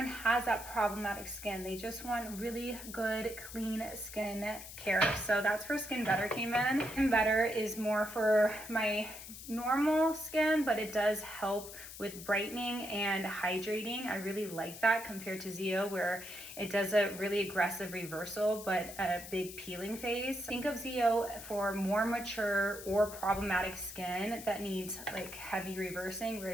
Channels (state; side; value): noise; left; hiss, 12 dB below the sound